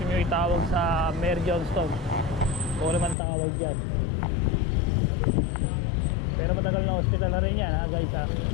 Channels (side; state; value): right; drops out; at 3.2 s